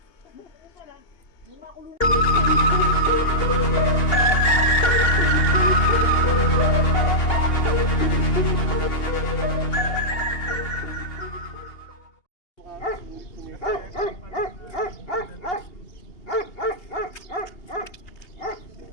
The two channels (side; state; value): right; late; 2.8 ms